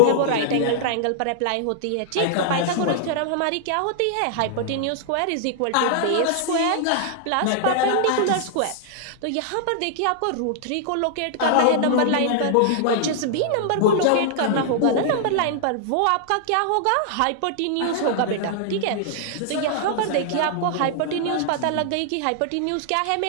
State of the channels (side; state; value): both; different; correlation -0.01